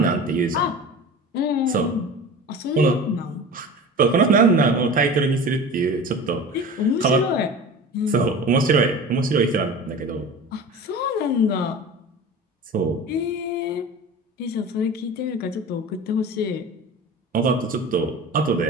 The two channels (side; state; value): both; normal; correlation 0.35